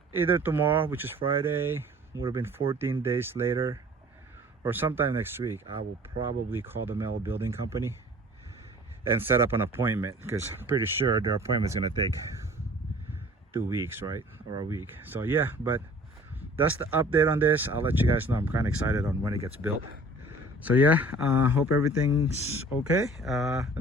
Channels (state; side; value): normal; both; correlation 0.49